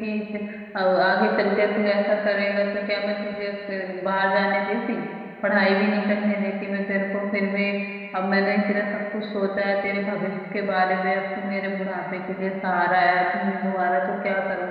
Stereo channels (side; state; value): both; identical; correlation 1.00